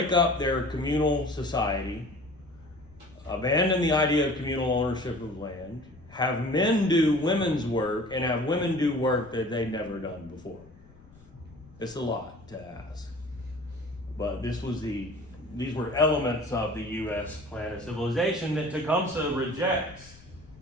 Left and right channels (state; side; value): noise; left; rumble, 25 dB below the sound